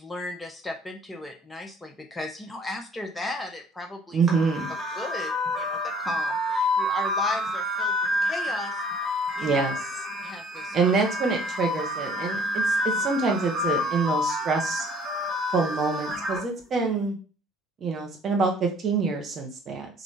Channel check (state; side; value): normal; both; correlation 0.55